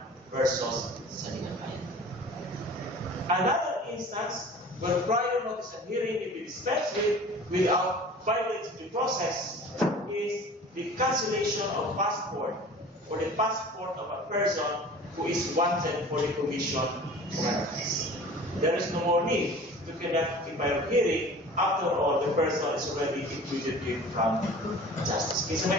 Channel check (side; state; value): both; normal; correlation 0.42